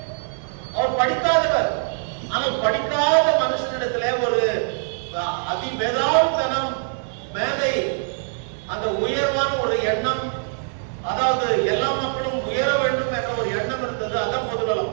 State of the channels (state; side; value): silent; left; digital silence